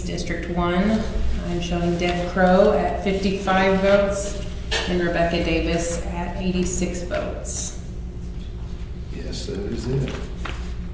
District 1, I'm showing Deb Crow at 55 votes and Rebecca Davis at 86 votes. Yes, that is it.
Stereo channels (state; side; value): identical; both; correlation 1.00